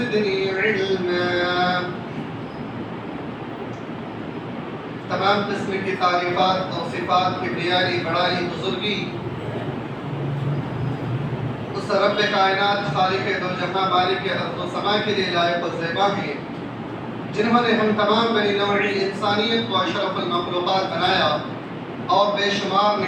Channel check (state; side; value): identical; both; correlation 1.00